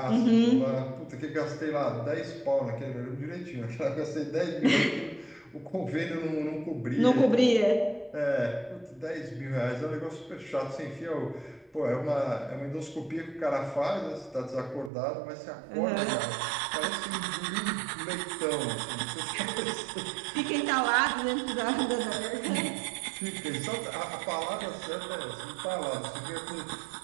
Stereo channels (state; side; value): drops out; left; at 14.9 s